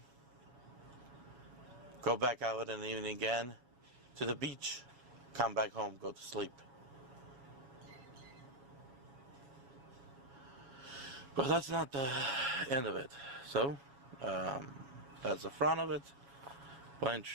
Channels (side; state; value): left; late; 7.2 ms